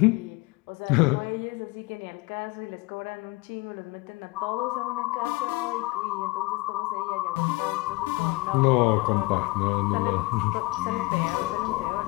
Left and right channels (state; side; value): quieter; right; 24.1 dB